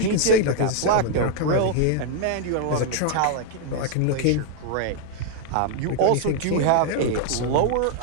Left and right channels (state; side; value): different; both; correlation 0.00